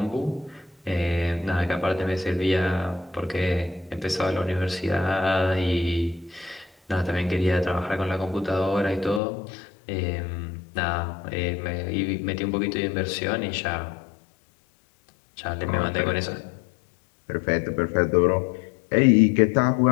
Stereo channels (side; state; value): right; drops out; at 9.2 s